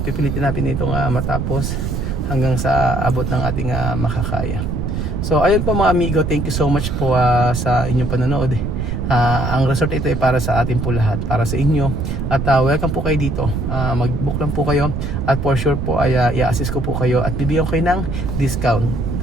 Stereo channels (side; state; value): right; noise; rumble, 2 dB below the sound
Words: pipilitin natin itong matapos hanggang sa abot ng ating makakaya. So ayun po mga amigo, thank you so much po sa inyong panonood. Ang resort ito ay para sa atin po lahat, para sa inyo. At welcome po kayo dito. Mag-book lang po kayo at for sure po ay i-assist ko po kayo at bibigyan ko kayo ng discount.